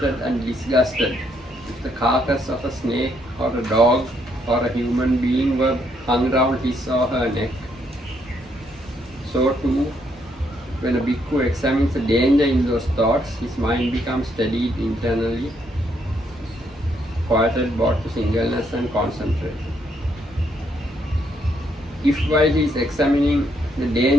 and disgusted if the carcass of a snake or a dog or a human being were hung round his or her neck, so too, when a bhikkhu examines the danger in those thoughts, his mind becomes steadied internally, quieted both to singleness and concentration. If while he is examining the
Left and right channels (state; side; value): normal; both; correlation 0.73